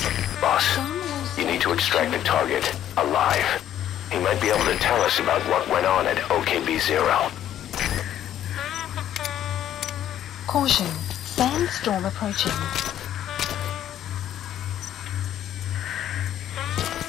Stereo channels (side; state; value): right; quieter; 11.2 dB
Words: Boss, you need to extract the target alive. He might be able to tell us about what went on at OKB-0. Caution. Sandstorm approaching.